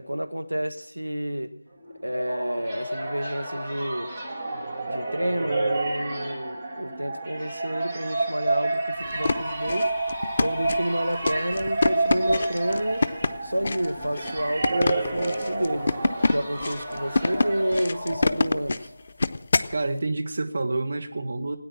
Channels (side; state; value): both; inverted; correlation -0.93